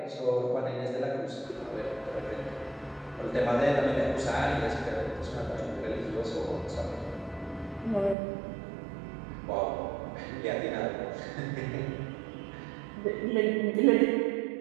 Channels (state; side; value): drops out; left; at 8.2 s